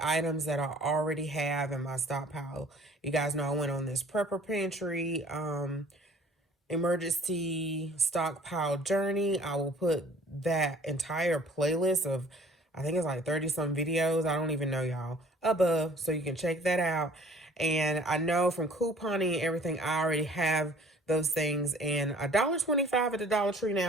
items that I already have in my stockpile. You guys know I went on this prepper pantry emergency stockpile journey. I will put that entire playlist of, I think it's like 30 some videos, I don't even know, y'all, above, so you can check that out. And I know from couponing and everything, I already have those things, and $1.25 at the Dollar Tree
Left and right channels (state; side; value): normal; both; correlation 0.52